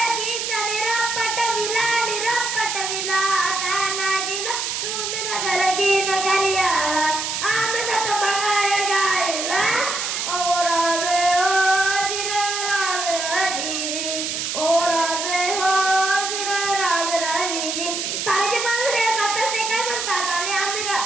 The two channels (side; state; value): right; noise; hiss, 2 dB below the sound